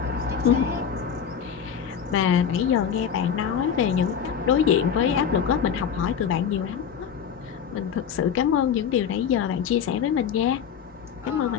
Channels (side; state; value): right; quieter; 7.8 dB